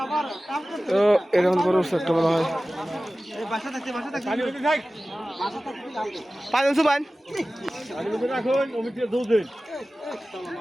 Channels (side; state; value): both; normal; correlation 0.96